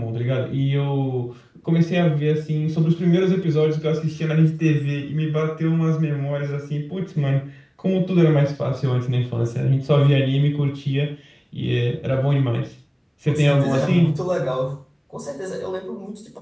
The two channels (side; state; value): both; identical; correlation 1.00